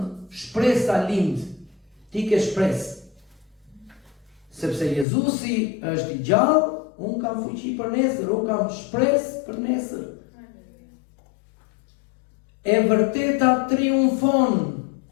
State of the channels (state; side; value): drops out; right; at 5.1 s